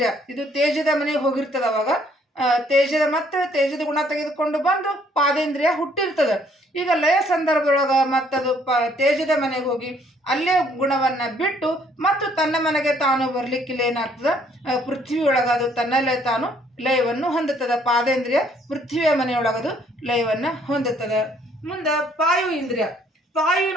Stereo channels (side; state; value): both; normal; correlation 0.64